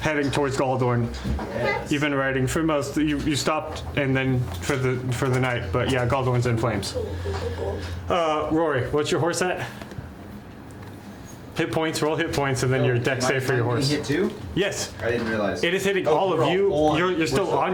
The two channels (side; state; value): both; identical; correlation 1.00